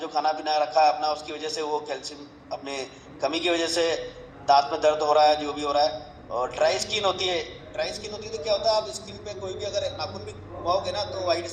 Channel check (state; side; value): identical; both; correlation 1.00